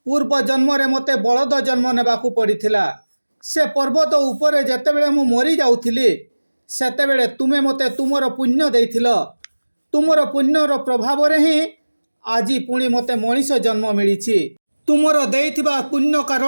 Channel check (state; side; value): inverted; both; correlation -1.00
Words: ପୂର୍ବ ଜନ୍ମରେ ମୋତେ ବଳଦ ଜନ୍ମ ନେବାକୁ ପଡ଼ିଥିଲା। ସେ ପର୍ବତ ଉପରେ ଯେତେବେଳେ ମୁଁ ମରିଯାଉଥିଲି, ସେତେବେଳେ ତୁମେ ମୋତେ ତୁମର ପୁଣ୍ୟ ଦେଇଥିଲ। ତୁମର ପୁଣ୍ୟର ପ୍ରଭାବରେ ହିଁ ଆଜି ପୁଣି ମୋତେ ମଣିଷ ଜନ୍ମ ମିଳିଛି। ତୁମର ଦେଇଥିବା ପୁଣ୍ୟ